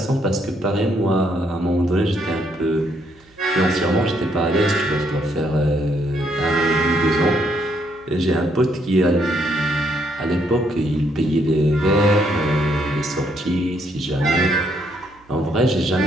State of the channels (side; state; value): right; noise; hum, 30 dB below the sound